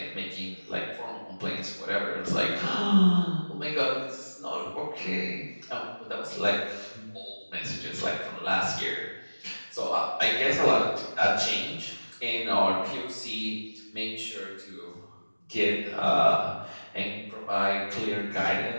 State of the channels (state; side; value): inverted; both; correlation -1.00